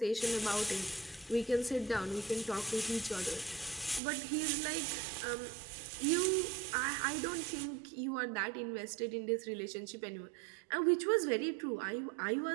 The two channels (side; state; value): left; drops out; at 4.0 s